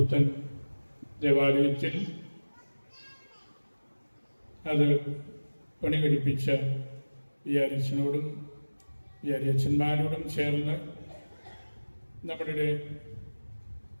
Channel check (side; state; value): both; inverted; correlation -1.00